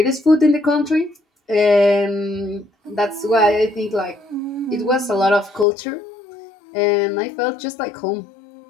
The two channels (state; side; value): drops out; right; at 5.7 s